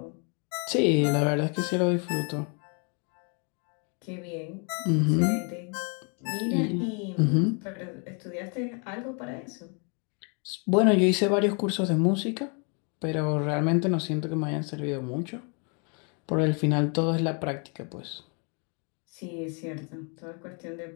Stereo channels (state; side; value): quieter; right; 36.5 dB